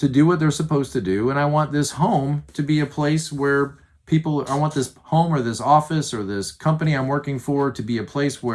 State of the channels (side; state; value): both; identical; correlation 1.00